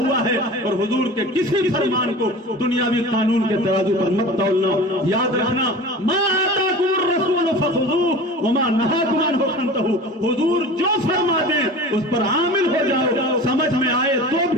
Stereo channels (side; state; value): both; normal; correlation 0.37